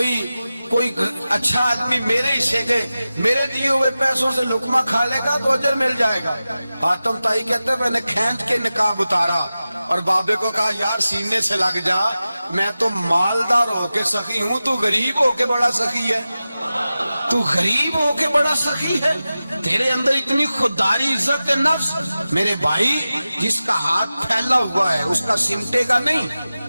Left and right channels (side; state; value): both; inverted; correlation -0.95